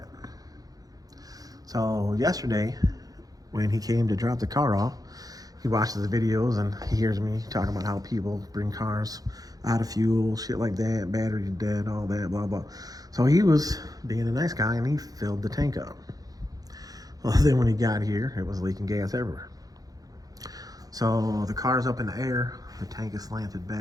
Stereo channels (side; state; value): left; late; 0.18 ms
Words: So yesterday, when he came to drop the car off, he watches the videos and he hears me talking about how people bring cars out of fuel, shit like that, battery dead, all that, blah, blah. So he was being a nice guy and he filled the tank up. Well, then when he got here, it was leaking gas everywhere. So the car's up in the air, the tank is slanted